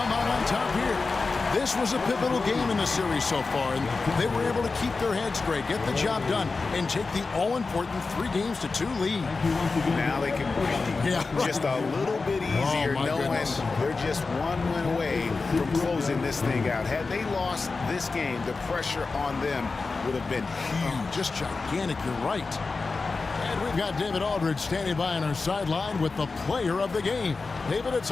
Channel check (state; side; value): quieter; right; 4.1 dB